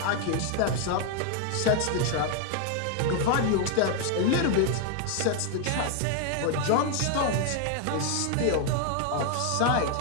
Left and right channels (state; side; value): different; both; correlation 0.01